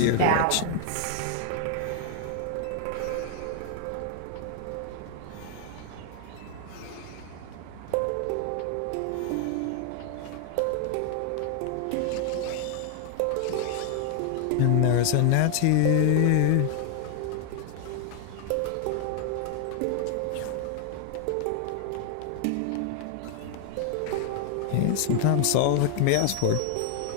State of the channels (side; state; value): both; different; correlation 0.00